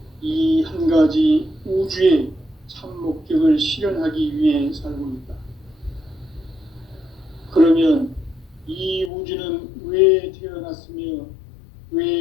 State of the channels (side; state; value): right; drops out; at 9.1 s